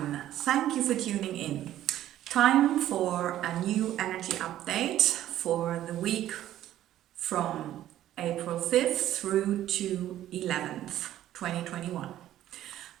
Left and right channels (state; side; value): quieter; left; 12.8 dB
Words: thank you for tuning in. Time for a new energy update for the week from April 5th through to 11th, 2021.